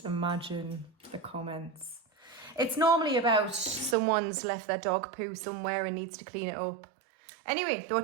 imagine the comments. It's normally about someone's left their dog poo somewhere and needs to clean it up. Anyway, they were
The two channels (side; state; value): left; drops out; at 4.0 s